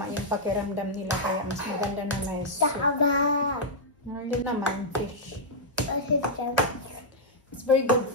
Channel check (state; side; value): normal; both; correlation -0.07